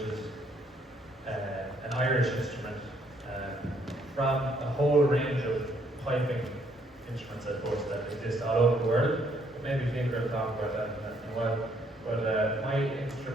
an Irish instrument, from a whole range of piping instruments, I suppose, that exist all over the world. But maybe Kiefer will talk about that in a while. But my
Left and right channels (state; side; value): normal; both; correlation 0.69